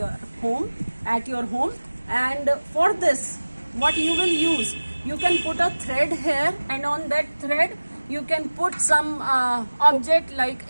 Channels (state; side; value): inverted; both; correlation -1.00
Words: home, at your home. And for this, what you will use, you can put a thread here, and on that thread you can put some object like